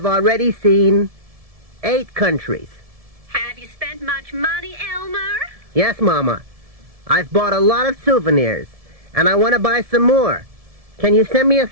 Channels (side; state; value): left; late; 1.7 ms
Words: already seen 8 countries. Have you spent much money, Elmer? Yes, Mama. I've bought a lot of souvenirs, and I want to buy some more. Can you send me